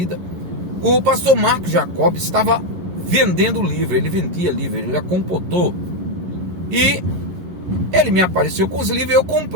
O pastor Marcos Jacob estava vendendo livro, ele vendia livro, ele era compositor. E ele me apareceu com os livros e eu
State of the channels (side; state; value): left; late; 11 ms